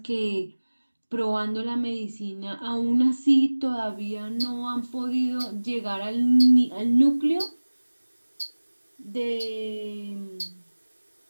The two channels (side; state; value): both; inverted; correlation -1.00